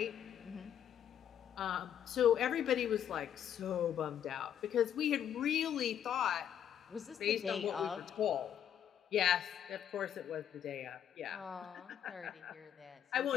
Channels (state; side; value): quieter; right; 9.5 dB